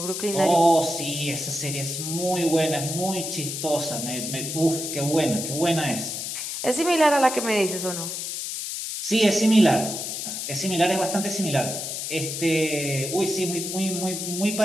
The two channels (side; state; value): left; noise; hiss, 5 dB below the sound